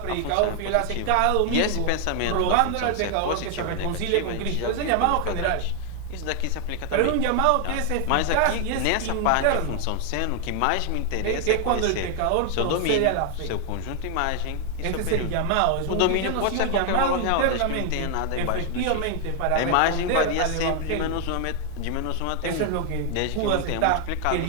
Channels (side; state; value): both; different; correlation 0.00